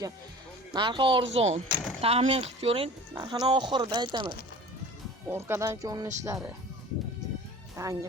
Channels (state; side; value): normal; both; correlation 0.41